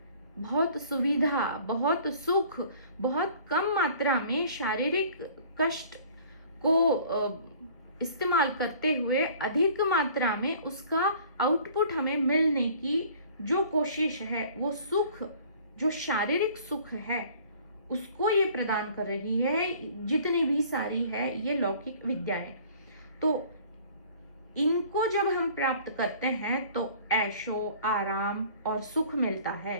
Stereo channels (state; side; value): inverted; both; correlation -0.51